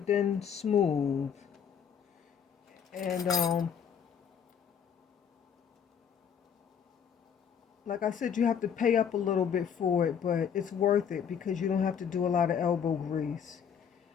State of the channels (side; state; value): right; quieter; 7.7 dB